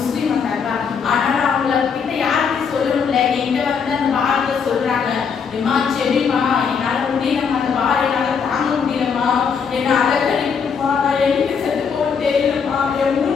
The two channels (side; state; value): right; quieter; 6.3 dB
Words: அந்த அக்கா. ஆனாலும் அவங்கள கிட்ட யாருக்கும் சொல்லணும்ல. என்கிட்ட வந்து அந்த பாரத்தை சொல்றாங்க, இம்மா செடிமா என்னால முடியலம்மா, அந்த பாரம் என்னால தாங்க முடியலம்மா, என்ன அலக்கழிக்குமா, நான் எங்க செத்து போக தெரியலம்மா, என்